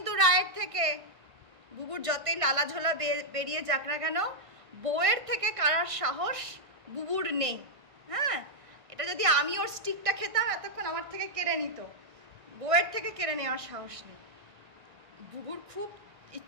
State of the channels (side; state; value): left; late; 1.5 ms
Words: রায়ের থেকে। বুবুর যতই লালা ঝোলা বেরিয়ে যাক না কেন, বউয়ের থেকে কারার সাহস বুবুর নেই। হ্যাঁ, এটা যদি আমি ওর স্টিকটা খেতাম এতক্ষণ আমার থেকে কেড়ে নিত। বউয়ের থেকে কেড়ে নেওয়ার সাহস নেই। বুবুর খুব